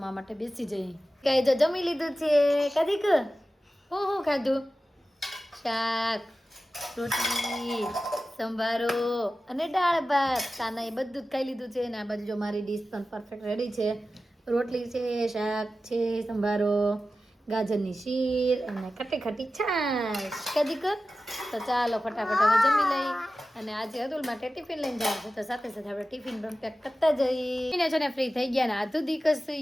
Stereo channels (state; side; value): normal; both; correlation 0.94